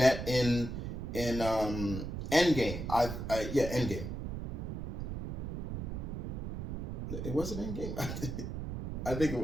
in Endgame. Endgame. It wasn't Endgame. I think it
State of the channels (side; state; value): right; noise; rumble, 4 dB below the sound